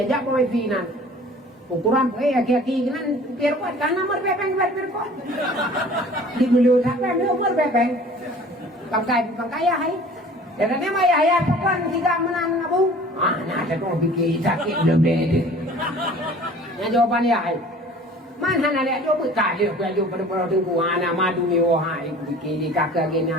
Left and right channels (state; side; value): normal; both; correlation 0.47